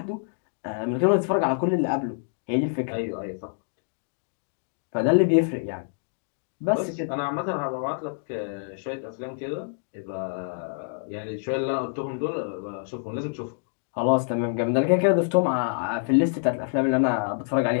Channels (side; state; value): right; silent; digital silence